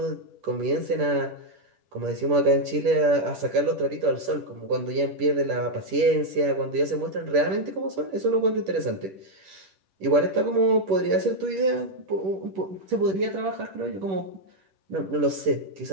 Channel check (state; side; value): late; left; 10 ms